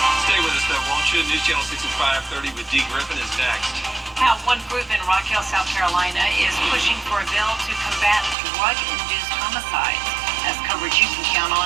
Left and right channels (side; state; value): left; drops out; at 8.3 s